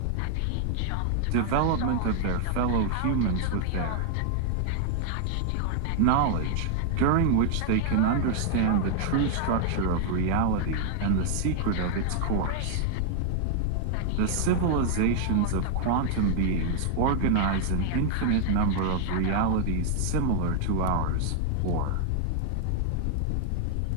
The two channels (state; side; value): different; both; correlation 0.00